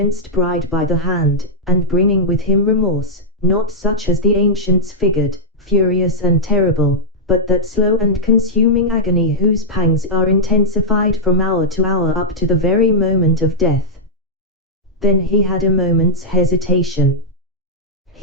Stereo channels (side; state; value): both; normal; correlation -0.07